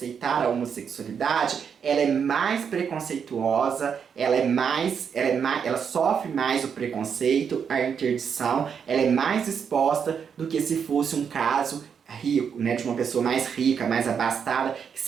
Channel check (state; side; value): quieter; left; 7.0 dB